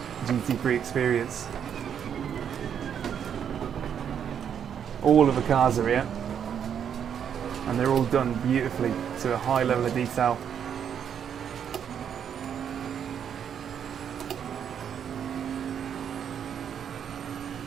GT3 experience. All of the cars are here, and they're all done beautifully to a high level of detail.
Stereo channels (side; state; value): left; quieter; 8.3 dB